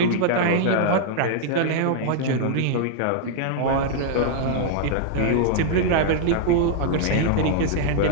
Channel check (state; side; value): different; both; correlation -0.01